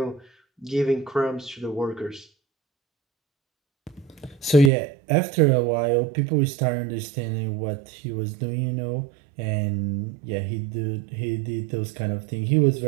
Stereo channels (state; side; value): drops out; left; at 4.7 s